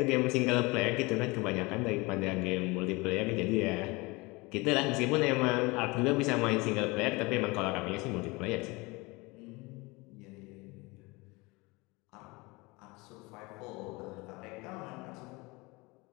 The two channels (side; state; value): right; quieter; 24.8 dB